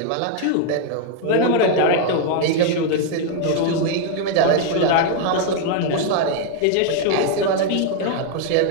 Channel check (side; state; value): both; different; correlation 0.00